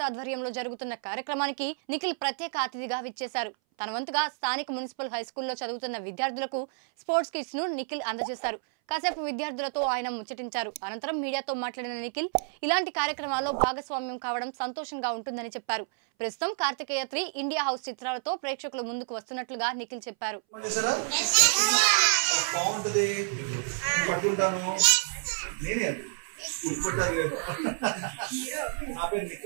ఆధ్వర్యంలో జరుగుతున్న కార్యక్రమానికి నిఖిల్ ప్రత్యేక అతిథిగా విచ్చేశారు. తన వంతుగా స్థానిక మున్సిపల్ హై స్కూల్లో చదువుతున్న విద్యార్థులకు స్పోర్ట్స్ కిట్స్ ను నిఖిల్ అందజేశారు. కాసేపు విద్యార్థులతో ఆయన ముచ్చటించారు. అనంతరం మీడియాతో మాట్లాడిన నిఖిల్ ఇలాంటి కార్యక్రమాల్లో భాగస్వామ్యం కావడం సంతోషంగా ఉంటుందని చెప్పారు. ప్రస్తుతం కార్తికేయ 3 ఇండియా హౌస్ చిత్రాలతో ప్రేక్షకుల ముందుకు వస్తున్నట్లుగా నిఖిల్ చెప్పారు.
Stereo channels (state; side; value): silent; left; 58 dB below the other